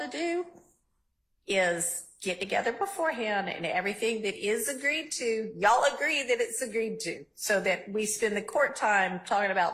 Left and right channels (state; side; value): identical; both; correlation 1.00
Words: do is get together beforehand and everything that is agreed to, y'all agree that it's agreed to, so that we spend the court time talking